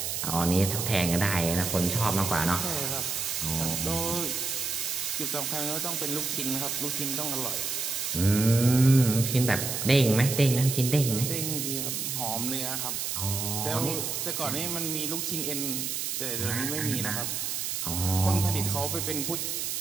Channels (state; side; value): noise; right; hiss, 2 dB below the sound